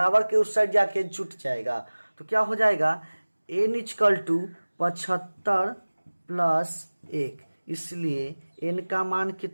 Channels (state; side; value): inverted; both; correlation -1.00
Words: के उस साइड जाके जुट जाएगा। तो क्या हो जाएगा n इक्वल टू 75 प्लस 1। इसलिए n का मान